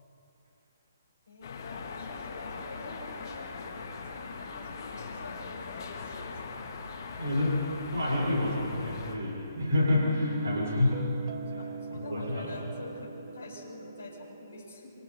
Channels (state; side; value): inverted; both; correlation -0.78